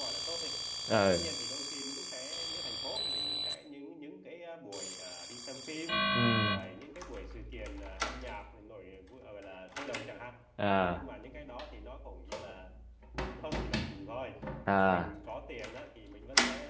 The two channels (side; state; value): both; identical; correlation 1.00